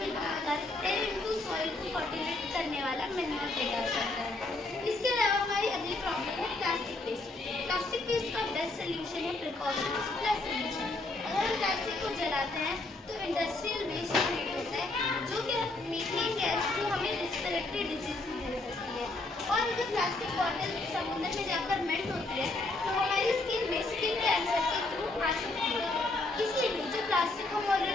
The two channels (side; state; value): right; quieter; 3.1 dB